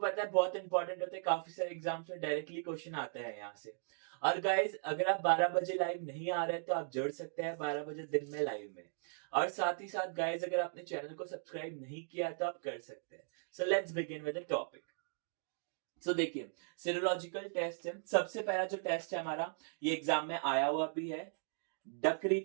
है बहुत इंपॉर्टेंट होते हैं, काफी सारे एग्जाम्स में डायरेक्टली क्वेश्चन आते हैं यहाँ से। और गाइस, अगर आप 12 बजे लाइव नहीं आ रहे तो आप जुड़ सकते हैं 12 बजे दिन में लाइव में। और साथ ही साथ गाइस, अगर आपने चैनल को सब्सक्राइब नहीं किया तो आप कर सकते हैं। So let's begin with the topic. So देखिए, सीरोलॉजिकल टेस्ट है। सबसे पहला जो टेस्ट है हमारा, ये एग्जाम में आया हुआ भी है, डकरी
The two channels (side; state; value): left; silent; digital silence